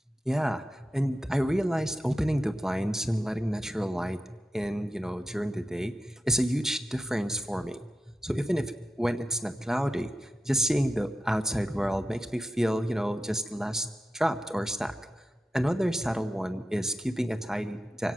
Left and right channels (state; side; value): normal; both; correlation 0.91